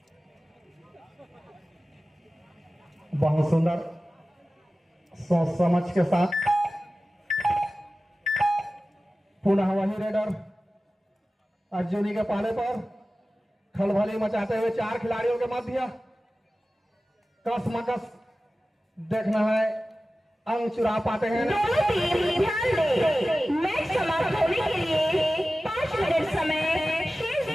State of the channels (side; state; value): both; normal; correlation 0.96